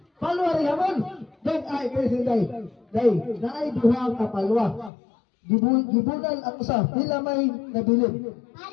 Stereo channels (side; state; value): right; drops out; at 4.9 s